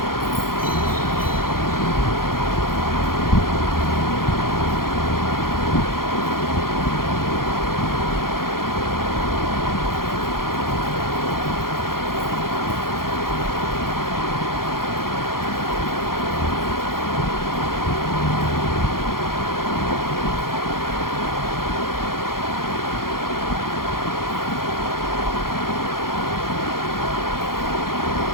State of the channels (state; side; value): late; right; 0.92 ms